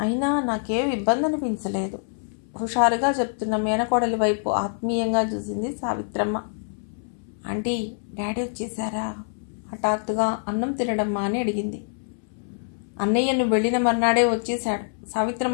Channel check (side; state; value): right; silent; 62 dB below the other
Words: అయినా నాకేం ఇబ్బంది అనిపించలేదు. హుషారుగా చెప్తున్న మేనకోడలి వైపు ఆత్మీయంగా చూసింది సావిత్రమ్మ. ఆంటీ, డాడీ వచ్చేసారా? హఠాత్తుగా అన్నం తినడమ్మా అని అడిగింది. అన్నయ్యను వెళ్ళిన మర్నాడే వచ్చేశాడు.